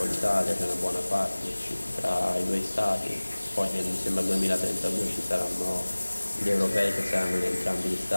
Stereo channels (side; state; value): both; inverted; correlation -1.00